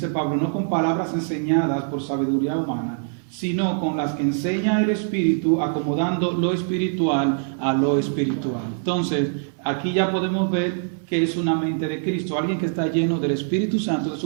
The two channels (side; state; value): left; silent; digital silence